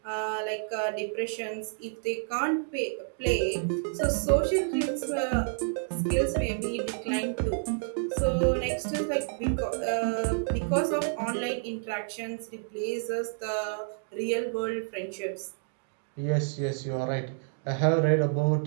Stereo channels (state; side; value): silent; left; digital silence